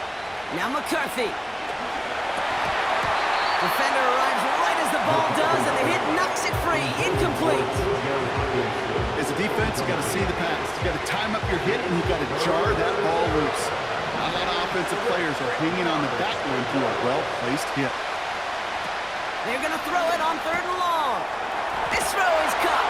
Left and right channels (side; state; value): both; identical; correlation 1.00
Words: Now McCarthy. Defender arrives right as the ball does, and the hit knocks it free. Incomplete. As a defense, you got to see the pass. You got to time up your hit, and you got to jar that ball loose. A lot of offensive players are hanging on the back line through a well-placed hit. They're going to throw it on 3rd and long. This throw is